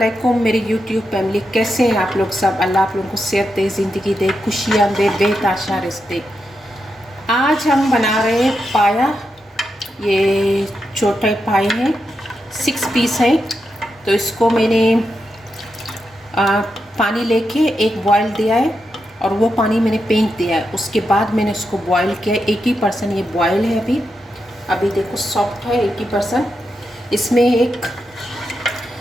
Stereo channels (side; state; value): both; normal; correlation 0.86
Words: मेरी यूट्यूब फैमिली, कैसे हैं आप लोग सब। अल्लाह आप लोगों को सेहत दे, ज़िंदगी दे, खुशियाँ दे, बेताशा रिज़्क़ दे। आज हम बना रहे हैं पाया। ये छोटे पाए हैं, 6 पीस हैं। तो इसको मैंने पानी लेके एक बॉयल दिया है और वो पानी मैंने फेंक दिया है। उसके बाद मैंने इसको बॉयल किया है। 80% ये बॉयल है अभी देखो सॉफ्ट है 80%। इसमें एक